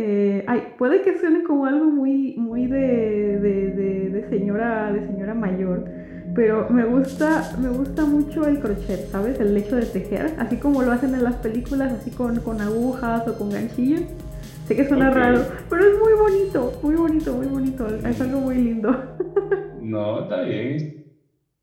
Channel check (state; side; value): identical; both; correlation 1.00